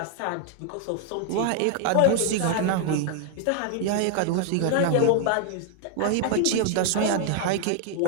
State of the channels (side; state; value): both; different; correlation 0.00